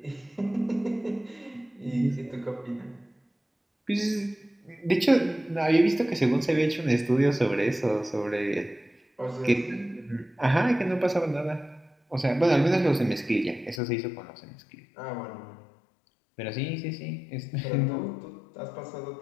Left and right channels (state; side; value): drops out; right; at 13.8 s